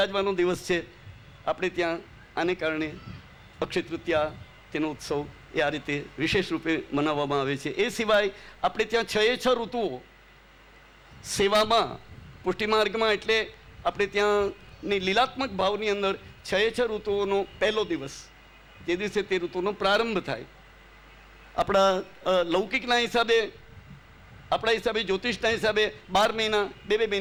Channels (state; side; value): identical; both; correlation 1.00